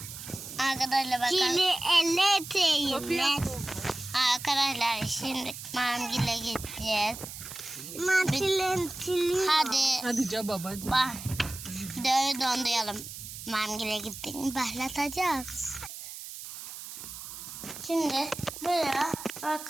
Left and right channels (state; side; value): noise; right; hiss, 11 dB below the sound